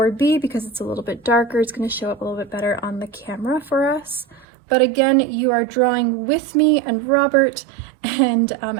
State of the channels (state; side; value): drops out; left; at 4.5 s